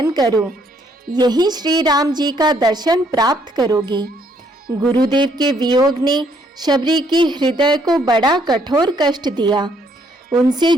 करो, यही श्री राम जी का दर्शन प्राप्त करोगी। गुरुदेव के वियोग ने शबरी की हृदय को बड़ा कठोर कष्ट दिया। उनसे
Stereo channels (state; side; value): normal; both; correlation 0.68